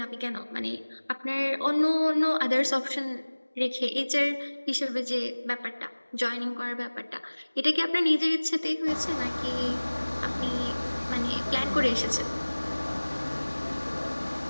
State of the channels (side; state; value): both; inverted; correlation -1.00